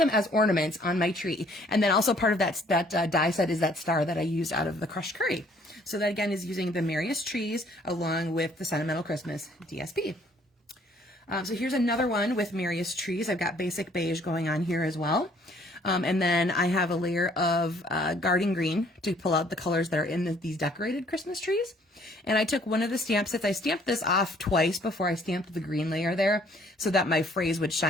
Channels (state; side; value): normal; both; correlation 0.61